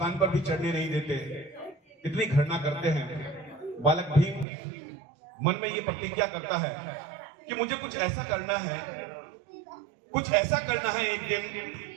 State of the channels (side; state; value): left; drops out; at 4.5 s